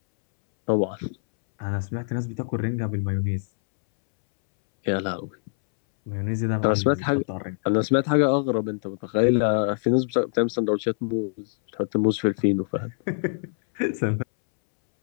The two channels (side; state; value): right; silent; 62 dB below the other